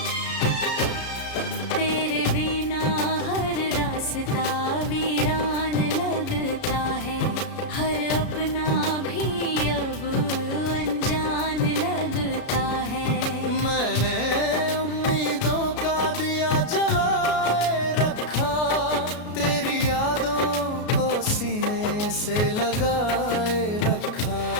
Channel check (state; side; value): late; right; 33 ms